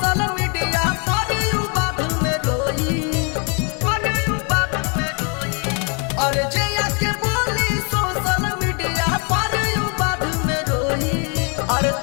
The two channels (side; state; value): right; quieter; 36.2 dB